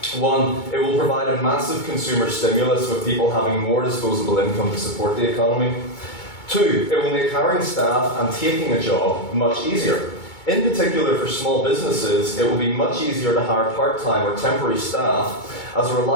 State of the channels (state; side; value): late; right; 2.2 ms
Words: 1. It will provide a massive consumer stimulus with people having more disposable income to support the economy. 2. It will make hiring staff and taking a job much easier. In particular for small businesses, it will be much easier to hire part-time or temporary staff as a